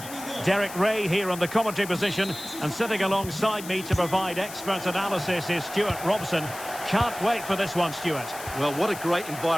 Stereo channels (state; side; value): noise; left; hiss, 13 dB below the sound